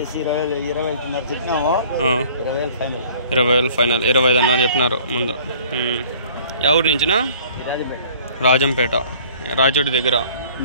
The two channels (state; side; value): inverted; both; correlation -0.51